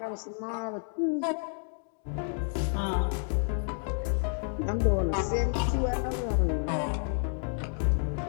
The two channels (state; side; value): silent; right; 58 dB below the other